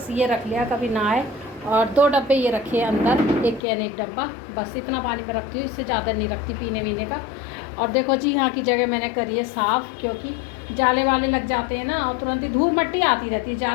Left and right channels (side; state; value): right; drops out; at 3.6 s